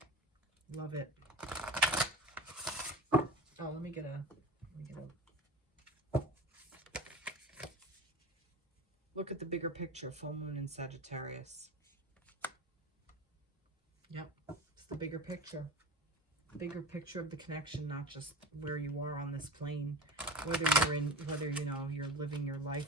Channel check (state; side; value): normal; both; correlation 0.31